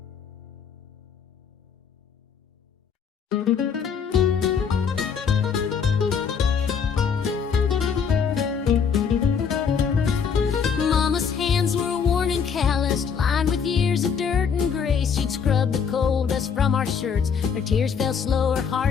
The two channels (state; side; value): quieter; right; 6.6 dB